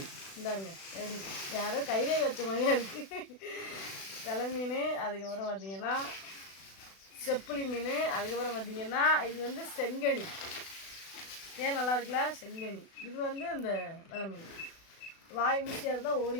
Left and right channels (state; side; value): late; right; 36 ms